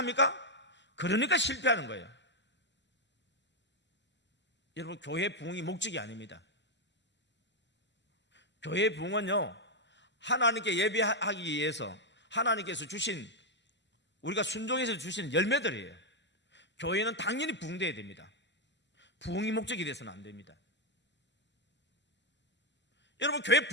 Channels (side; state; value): both; normal; correlation 0.02